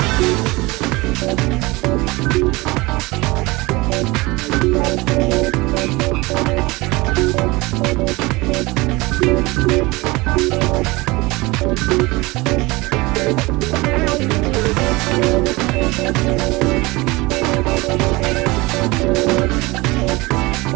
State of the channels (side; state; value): left; quieter; 22.7 dB